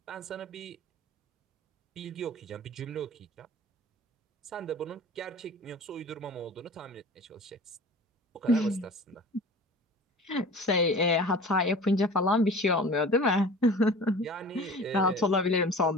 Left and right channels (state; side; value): normal; both; correlation 0.40